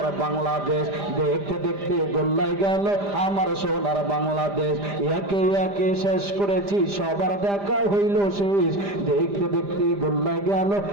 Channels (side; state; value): left; late; 5.0 ms